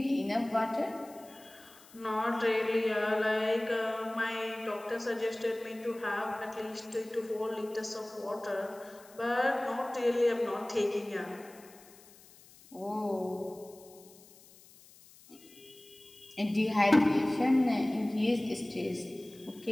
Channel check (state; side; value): noise; left; hiss, 24 dB below the sound